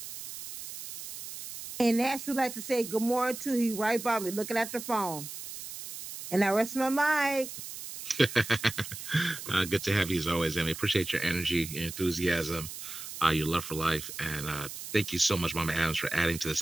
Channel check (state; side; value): noise; right; hiss, 10 dB below the sound